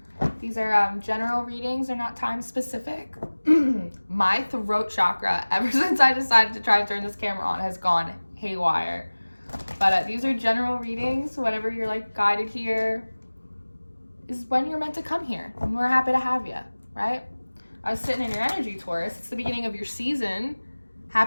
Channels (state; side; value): inverted; both; correlation -1.00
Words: These are general readings, they're not time specific. My throat chakra, ever since I decided to try to turn this camera on, has gone haywire. But these are general readings. Whenever you're like guided here is when you're meant to come here, and we're happy to have you, right? I was sitting in your energy, Taurus. It's the beginning of your season.